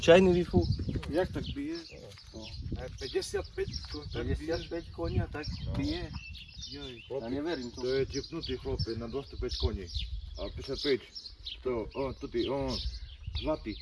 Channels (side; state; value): both; identical; correlation 1.00